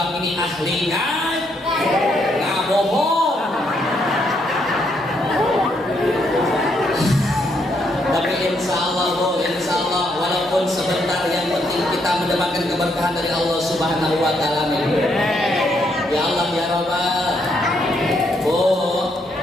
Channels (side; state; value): both; normal; correlation 0.75